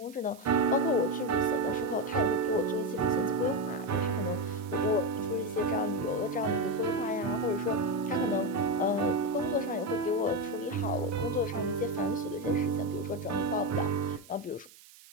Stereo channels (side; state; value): right; noise; hiss, 22 dB below the sound